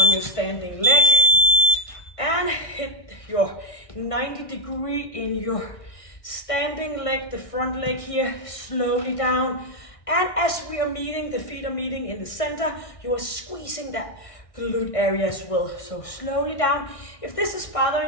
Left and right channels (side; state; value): right; late; 1.6 ms